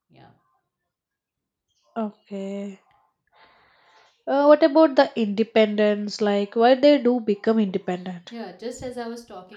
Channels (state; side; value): identical; both; correlation 1.00